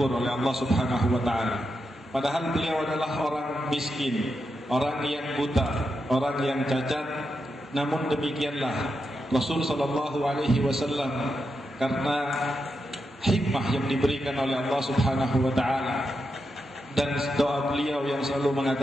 oleh Allah Subhanahu wa taala." Padahal beliau adalah orang miskin, orang yang buta, orang yang cacat. Namun demikianlah Rasul sallallahu alaihi wasallam karena hikmah yang diberikan oleh Allah Subhanahu wa taala dan doa beliau yang selalu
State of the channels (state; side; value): normal; both; correlation 0.86